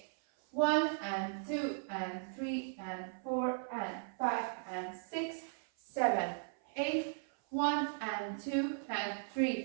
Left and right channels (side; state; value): left; silent; 53 dB below the other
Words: 1 and 2 and 3 and 4 and 5 and 6, 7, 8. 1 and 2 and